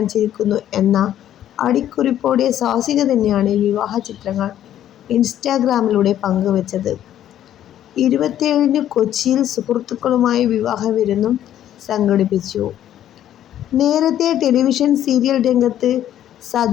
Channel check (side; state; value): right; quieter; 11.4 dB